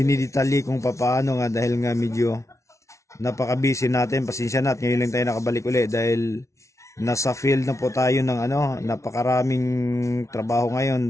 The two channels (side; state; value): right; late; 0.14 ms